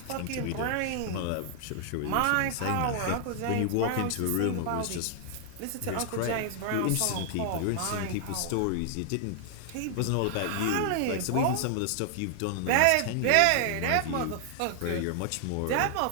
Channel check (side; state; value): both; different; correlation 0.00